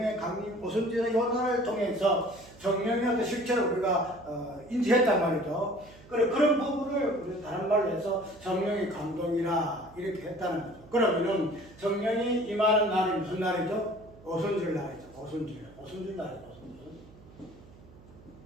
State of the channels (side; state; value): right; noise; hum, 22 dB below the sound